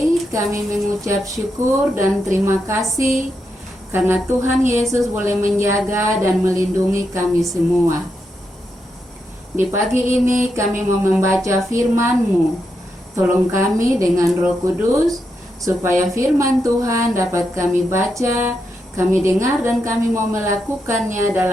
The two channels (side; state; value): both; normal; correlation 0.84